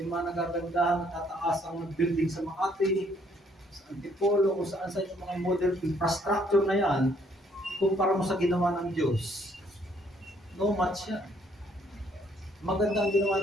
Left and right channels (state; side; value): normal; both; correlation 0.66